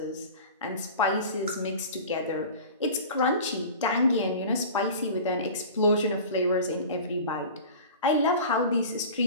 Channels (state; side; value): inverted; both; correlation -0.37